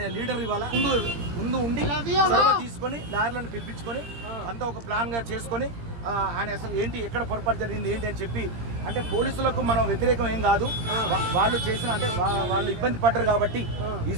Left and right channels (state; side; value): late; left; 17 ms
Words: లీడర్ ఇవాళ ముందు ఉండి చొరవ తీసుకొని లాయర్లను పిలిపించుకొని అంతా ఒక ప్లాన్గా చేసుకొని ఆయన అసలు ఏంటి ఎక్కడ పొరపాటు జరిగింది ఏంటి అని చెప్పి, అంటే పోలీసులకు మనం వ్యతిరేకం ఏం కాదు, వాళ్ళు చేసిన అంటే వాళ్ళు ఇబ్బంది పడ్డారు కాబట్టి ఈ